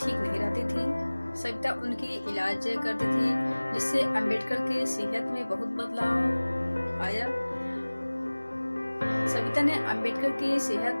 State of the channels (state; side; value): inverted; both; correlation -1.00